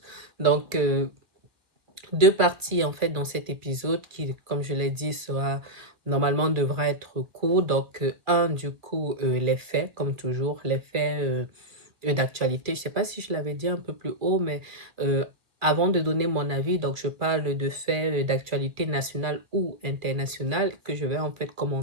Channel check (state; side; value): late; left; 2.2 ms